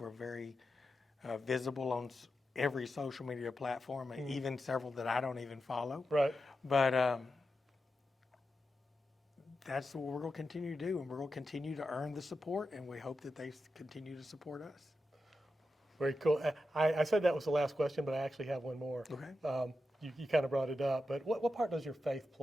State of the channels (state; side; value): normal; both; correlation 0.89